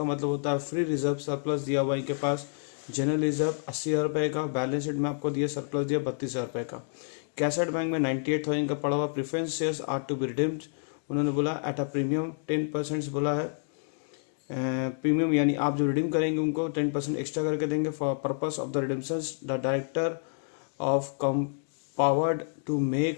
मतलब होता है फ्री रिजर्व सरप्लस दिया हुआ इनके पास। जनरल रिजर्व 80,000 रुपये का, बैलेंस शीट में आपको दिया सरप्लस दिया 32,000 रुपये का। कैसेट बैंक में 98,000 का पड़ा हुआ। Preference shares are to be redeemed, उन्होंने बोला एट अ प्रीमियम 10% बोला है। प्रीमियम यानी आप जो रिडीम करेंगे उनको 10% एक्स्ट्रा करके देंगे। For purpose of the redemption the director of come powered to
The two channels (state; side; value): silent; right; digital silence